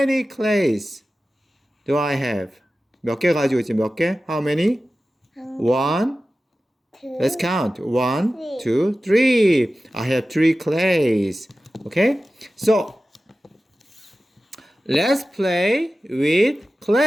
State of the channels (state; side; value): normal; both; correlation 0.95